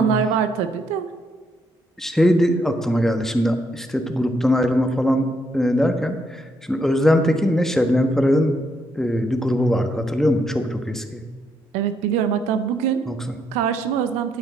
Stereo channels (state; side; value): normal; both; correlation 0.75